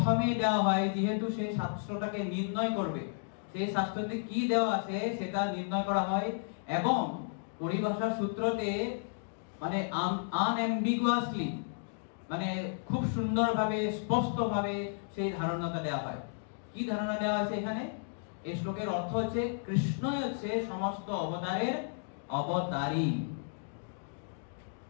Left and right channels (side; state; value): right; silent; digital silence